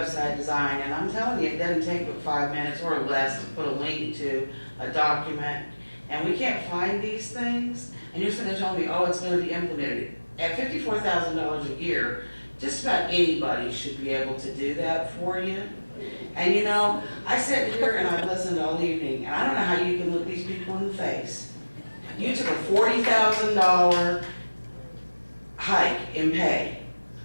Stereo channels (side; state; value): both; inverted; correlation -1.00